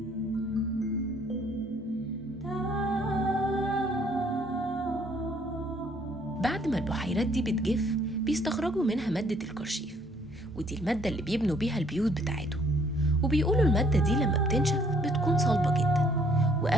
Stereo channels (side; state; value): both; normal; correlation 0.62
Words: بعد ما البحيرات دي بتجف بيستخرجوا منها مادة الكرشيف، ودي المادة اللي بيبنوا بيها البيوت بتاعتهم. وبيقولوا المادة دي لما بتنشف بتكون صلبة جدا،